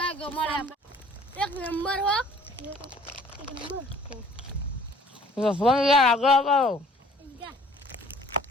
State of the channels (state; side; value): normal; both; correlation 0.54